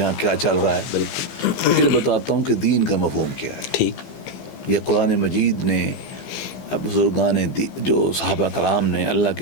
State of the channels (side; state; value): right; late; 15 ms